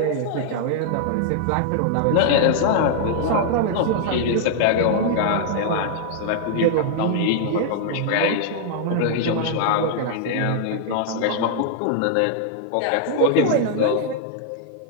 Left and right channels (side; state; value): both; different; correlation -0.01